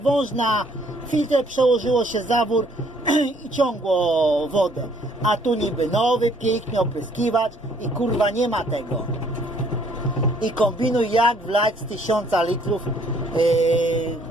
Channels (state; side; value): normal; both; correlation 0.63